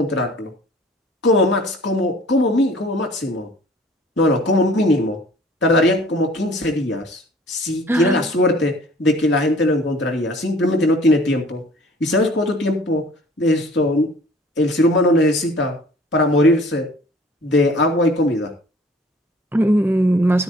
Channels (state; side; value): normal; both; correlation 0.52